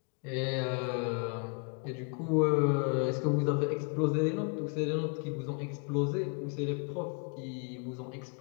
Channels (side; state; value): right; quieter; 37.5 dB